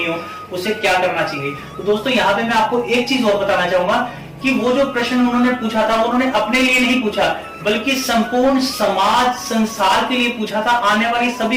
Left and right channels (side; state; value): both; identical; correlation 1.00